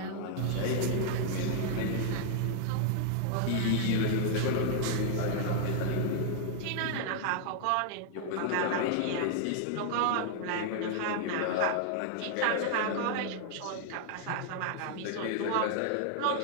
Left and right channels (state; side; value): different; both; correlation -0.01